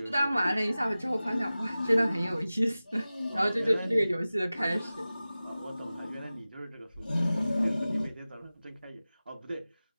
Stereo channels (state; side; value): inverted; both; correlation -0.96